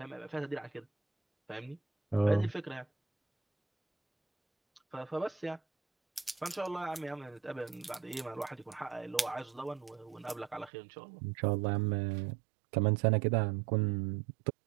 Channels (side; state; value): left; drops out; at 10.7 s